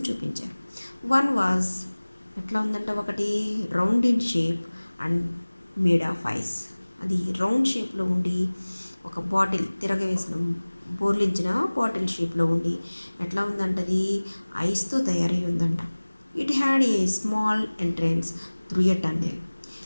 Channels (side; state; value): both; inverted; correlation -1.00